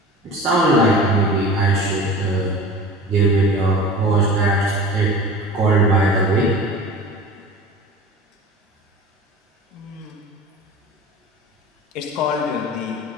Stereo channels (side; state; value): both; normal; correlation 0.36